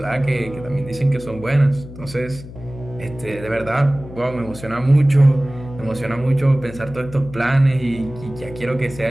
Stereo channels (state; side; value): noise; left; hum, 15 dB below the sound